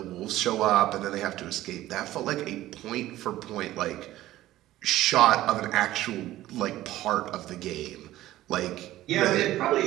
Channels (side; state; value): left; quieter; 15.1 dB